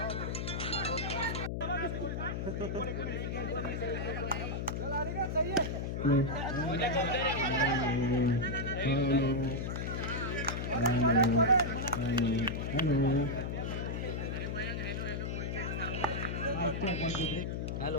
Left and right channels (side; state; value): left; noise; hum, 2 dB below the sound